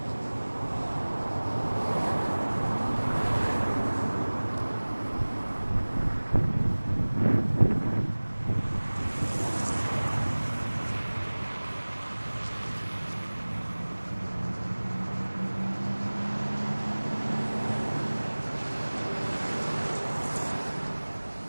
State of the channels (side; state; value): both; inverted; correlation -1.00